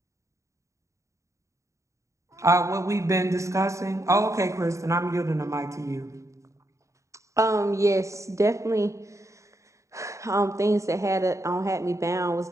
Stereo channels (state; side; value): late; left; 0.15 ms